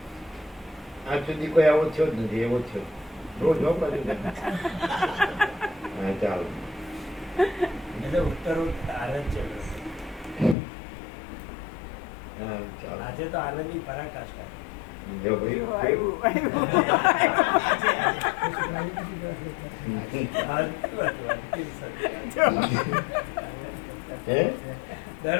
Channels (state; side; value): drops out; right; at 10.6 s